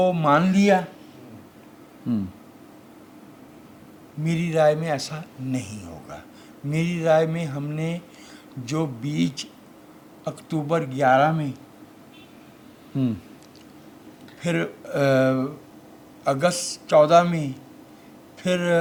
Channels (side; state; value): both; identical; correlation 1.00